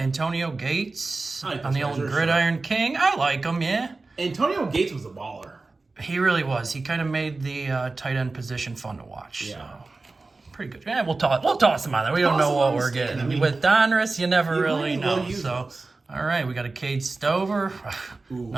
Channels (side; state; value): left; quieter; 3.6 dB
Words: Gates I like on this the guy, old sure, Gridiron King. I like him, yeah. Antonio Gates was a baller. He really was. He kind of made the tight end position fun to watch. Yeah. So. Pretty good. Yeah, we'll toss him on there. We don't Toss know him what on the we're stand. getting. I mean, With Donruss, you never you really might as well know. use So, those. all right, we got a Cade Stover,